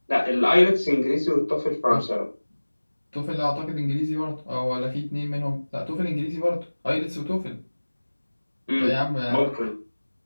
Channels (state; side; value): inverted; both; correlation -1.00